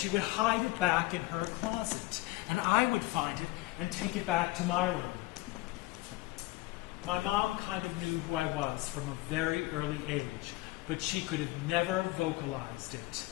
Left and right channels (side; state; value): right; quieter; 19.5 dB